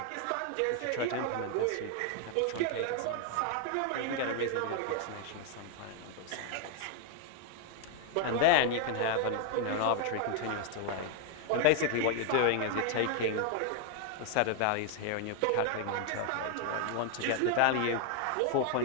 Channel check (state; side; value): different; both; correlation 0.00